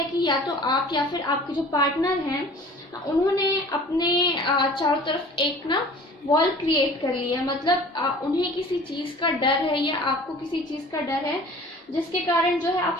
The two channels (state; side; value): normal; both; correlation 0.46